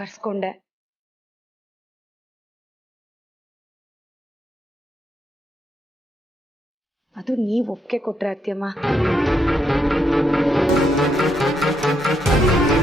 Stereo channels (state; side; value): normal; both; correlation 0.79